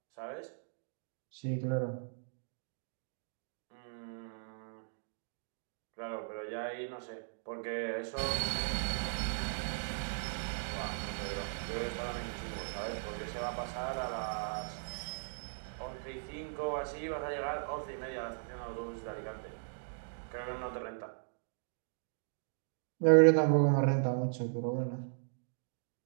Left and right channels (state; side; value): silent; left; digital silence